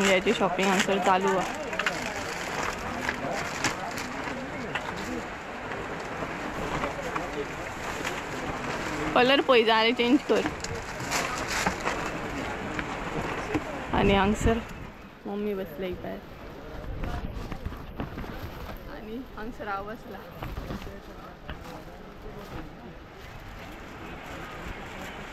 शॉपिंग हांगसर चालू आहे कलर पळय जाय चेंज कर आणि हांगसर मम्मी बसले भायर आणि हांगसर हांव बसला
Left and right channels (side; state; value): both; identical; correlation 1.00